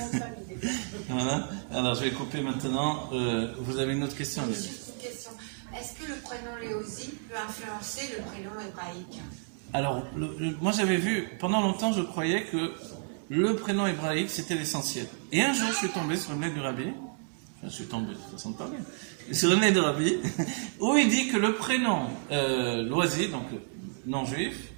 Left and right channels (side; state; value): left; silent; 57 dB below the other